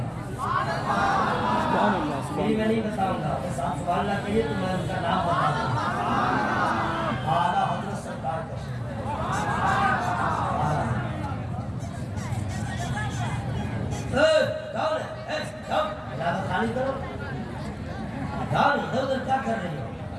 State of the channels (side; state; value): both; identical; correlation 1.00